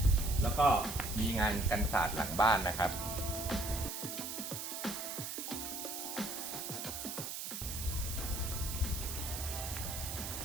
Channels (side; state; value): right; noise; hiss, 5 dB below the sound